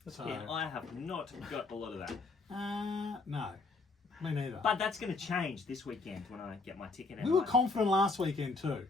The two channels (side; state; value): right; quieter; 3.8 dB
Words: So, Yeah, I have not got a lot of that. no, me neither. But that's going to change this weekend when I get my ticket. We were confident last weekend too.